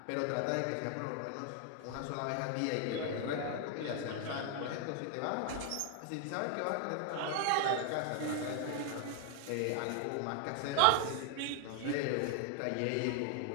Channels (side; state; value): both; different; correlation 0.00